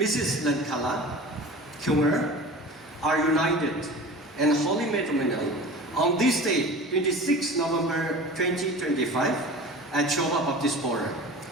Lankala Kyunger are united and holy matrimonial on this day, 26 November 2025, at Shoba Baptist Forum.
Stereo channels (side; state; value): both; normal; correlation 0.37